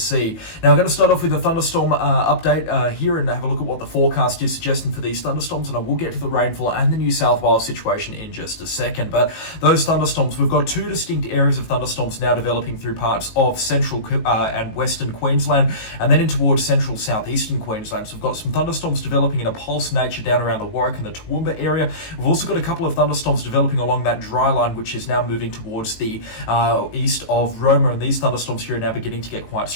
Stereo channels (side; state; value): right; late; 19 ms